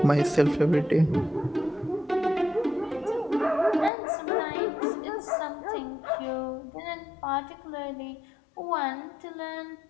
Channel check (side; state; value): right; drops out; at 3.9 s